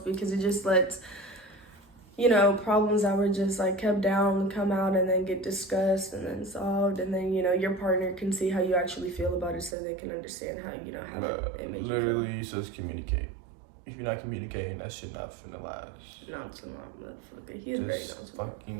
it just lets problems that were just like kept down come out and then get discussed and then solved, and then your partner can see how you actually feel about it, so they can understand how it makes you feel. Literally, just communicate. If you're not communicating, that shit not finna last. Nonchalant motherfucker. He's very nonchalant.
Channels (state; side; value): drops out; left; at 9.8 s